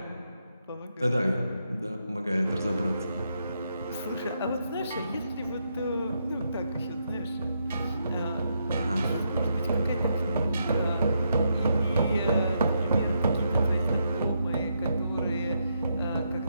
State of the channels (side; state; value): both; inverted; correlation -0.80